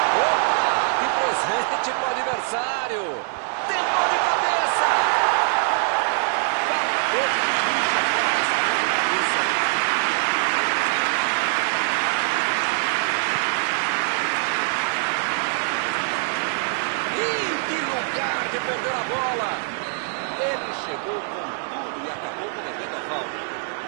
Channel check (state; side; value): silent; left; 59 dB below the other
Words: Opa, que presente para o adversário. Tentou de cabeça. Faltou capricho agora nessa bola de cabeça. Ih, que lugar de perder a bola. Ele chegou com tudo e acabou perdendo a falta.